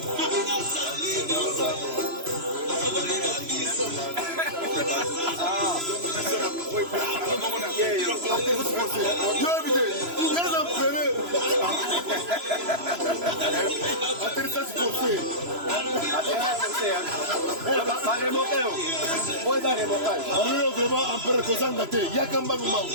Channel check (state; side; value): late; left; 3.0 ms